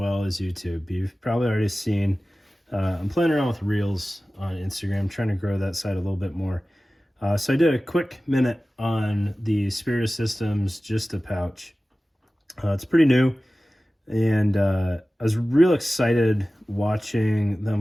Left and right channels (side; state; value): both; normal; correlation 0.96